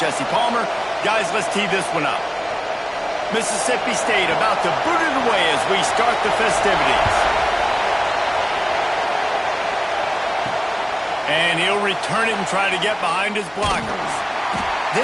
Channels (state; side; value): identical; both; correlation 1.00